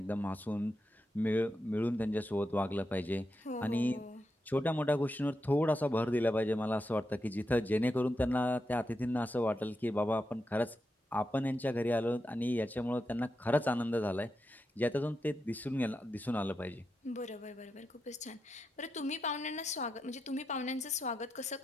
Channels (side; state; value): both; normal; correlation 0.87